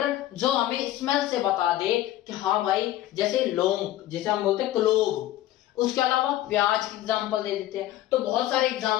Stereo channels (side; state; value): right; quieter; 14.1 dB